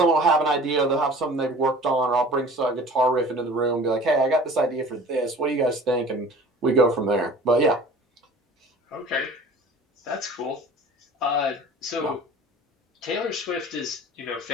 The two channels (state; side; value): normal; both; correlation 0.44